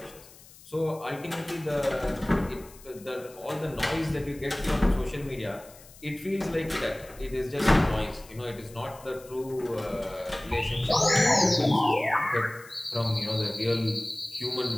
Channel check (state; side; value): noise; left; hiss, 22 dB below the sound